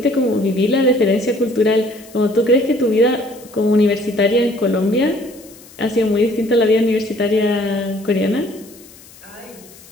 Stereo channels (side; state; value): left; noise; hiss, 23 dB below the sound